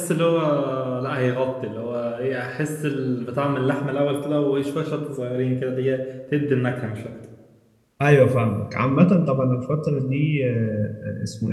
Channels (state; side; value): identical; both; correlation 1.00